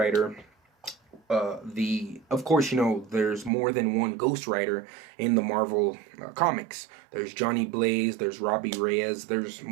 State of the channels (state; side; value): drops out; left; at 3.5 s